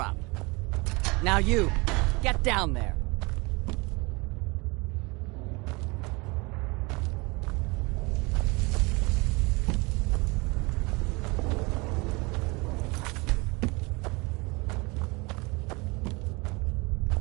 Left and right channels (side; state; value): left; quieter; 26.4 dB